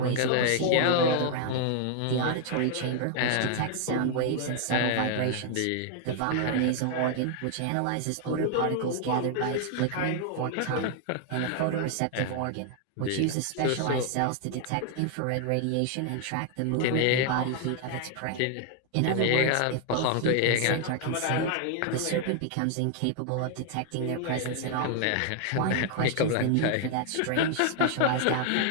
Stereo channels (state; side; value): different; both; correlation 0.00